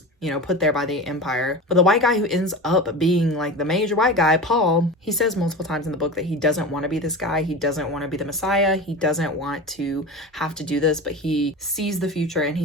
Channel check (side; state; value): both; normal; correlation 0.29